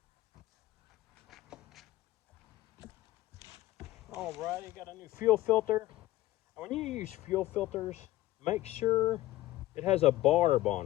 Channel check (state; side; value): quieter; right; 16.4 dB